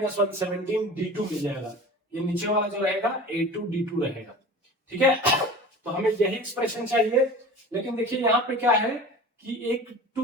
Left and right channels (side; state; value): both; normal; correlation 0.37